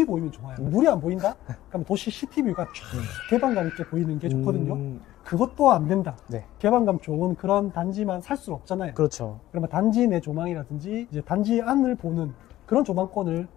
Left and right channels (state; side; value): quieter; right; 14.6 dB